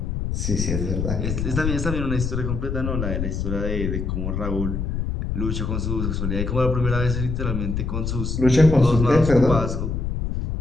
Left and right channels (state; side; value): noise; left; rumble, 2 dB below the sound